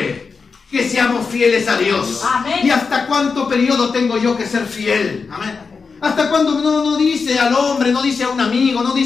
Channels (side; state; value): right; quieter; 5.0 dB